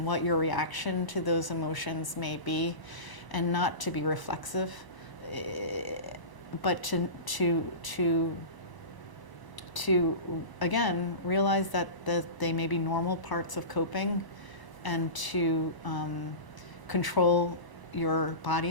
what your reaction to those emotions may be, and not to be reflexive, but to again realize that they may be normal parts of coping, and to control your body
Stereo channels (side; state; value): right; late; 1.0 ms